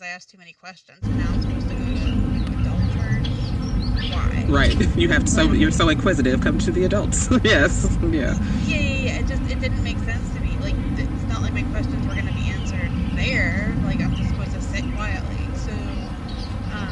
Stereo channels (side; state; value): both; identical; correlation 1.00